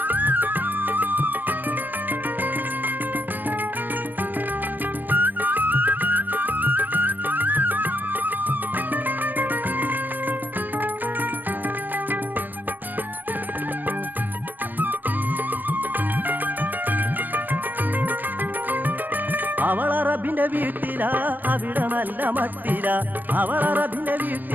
അവളറബിന്റെ വീട്ടിലാ അവിടെ നല്ല മട്ടില അവളറബിന്റെ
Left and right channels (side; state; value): left; late; 0.090 ms